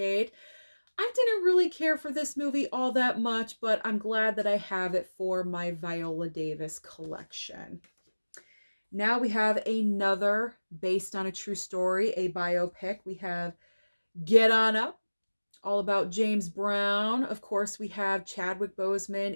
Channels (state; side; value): inverted; both; correlation -1.00